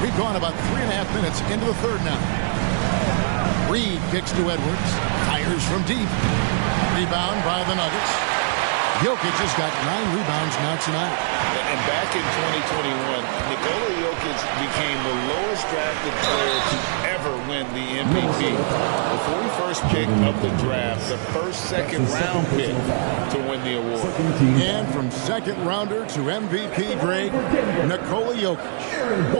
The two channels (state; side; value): silent; left; 60 dB below the other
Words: We've gone about 3.5 minutes into the third now. Reed kicks to Edwards. Fires from deep. Rebound by the Nuggets. Jokic has got 9 rebounds now tonight. And back in 2021, Nikola Jokic became the lowest drafted player to ever win the MVP. The 41st pick of the draft, the first second-round pick to win the award. And from second-rounder to MVP, Greg, Nikola Jokic.